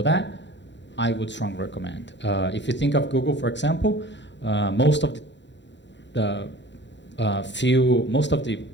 that, I would strongly recommend. If you think of Google, for example, most of the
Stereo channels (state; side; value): late; right; 0.52 ms